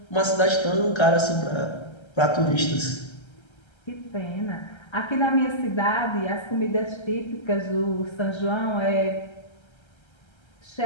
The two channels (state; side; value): late; right; 1.3 ms